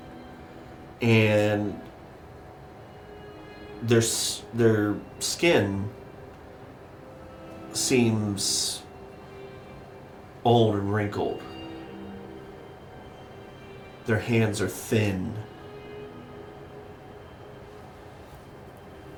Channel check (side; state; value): both; identical; correlation 1.00